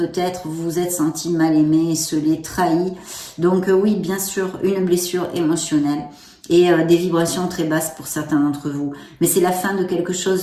vous vous êtes senti mal aimé, esseulé, trahi. Donc oui, bien sûr, une blessure émotionnelle et des vibrations très basses pour certains d'entre vous. Mais c'est la fin de quelque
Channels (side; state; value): both; identical; correlation 1.00